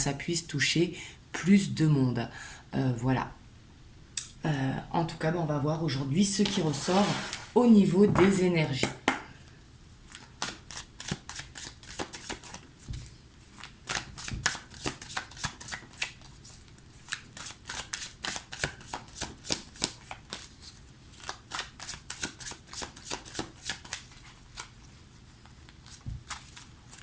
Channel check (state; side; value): identical; both; correlation 1.00